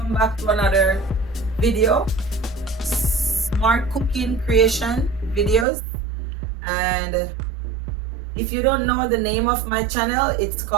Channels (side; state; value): left; drops out; at 5.7 s